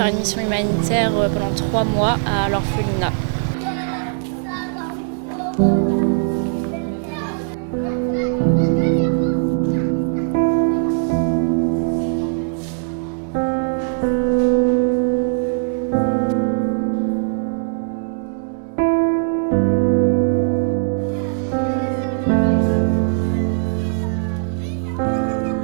une mission humanitaire pendant 3 mois à l'orphelinat.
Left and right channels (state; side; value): silent; left; digital silence